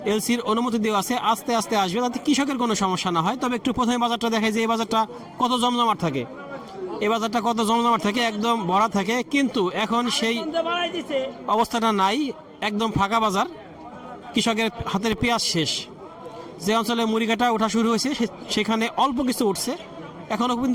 এলসির অনুমতি দেওয়া আছে, আস্তে আস্তে আসবে, যাতে কৃষকের কোনো সমস্যা না হয়। তবে একটু প্রথমে বাজারটা দেখায় যে এই বাজারটা কত জমজমাট থাকে। এই বাজারটা কত জমজমাট থাকে, একদম ভরা থাকে, কিন্তু এখন সেই অবস্থাটা নাই, একদম ফাঁকা বাজার। কৃষকের হাতের পেঁয়াজ শেষ। যে অঞ্চলে মুড়ি কাটা ওঠা শুরু হয়েছে সেখানে অল্প কিছু উঠছে, এখনও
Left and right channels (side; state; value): both; identical; correlation 1.00